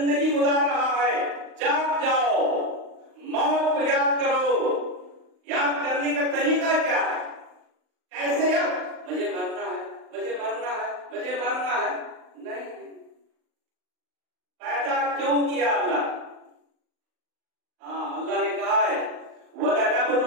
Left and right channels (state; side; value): late; left; 39 ms